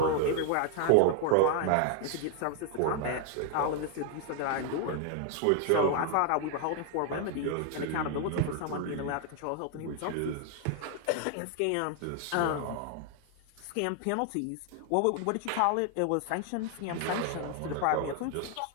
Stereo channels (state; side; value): different; both; correlation 0.00